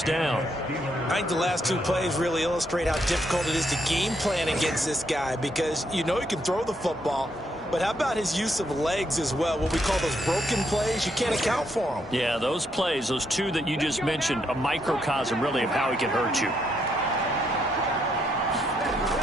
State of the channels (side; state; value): both; normal; correlation 0.76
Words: down. I think the last 2 plays really illustrate how difficult it is to game plan against this guy because you know he can throw the football, but how about his use of legs as well? What we call those broken plays, you can't account for them. Yeah, those plays, those 2 that you just mentioned, a microcosm really of how he can hurt you.